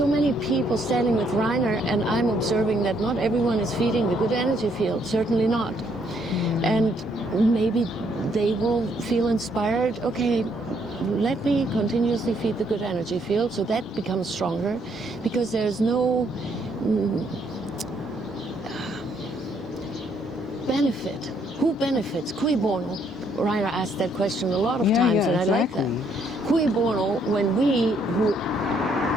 many people standing with Reiner, and I'm observing that not everyone is feeding the good energy field, certainly not. And maybe they will feel inspired, okay, let me continuously feed the good energy field, so that becomes stronger, because there's no benefit. Who benefits? Cui bono? Reiner asked that question a lot of times, and I like that. Cui bono, when we who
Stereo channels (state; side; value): normal; both; correlation 0.70